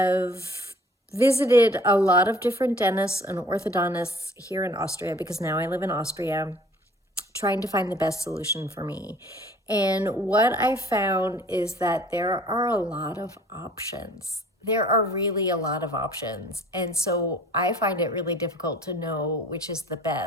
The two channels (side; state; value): both; normal; correlation 0.51